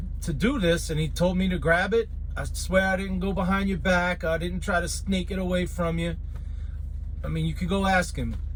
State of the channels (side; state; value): both; identical; correlation 1.00